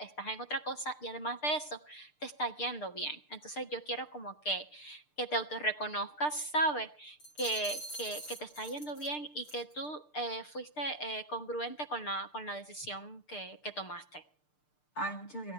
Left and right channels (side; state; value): right; late; 6.7 ms